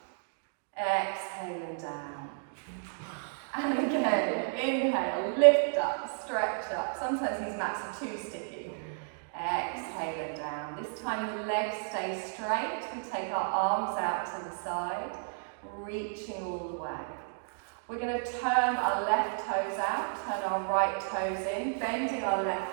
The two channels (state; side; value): silent; left; digital silence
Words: Exhale and down. And again, inhale, lift up, stretch up. Sometimes these mats are too sticky. Exhale and down. This time the legs stay straight. We take our arms out to the side, reaching all the way. We're going to turn our left toes out, turn our right toes in, bending our